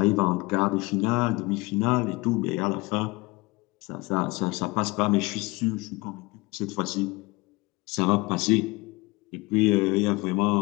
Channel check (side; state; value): right; quieter; 23.6 dB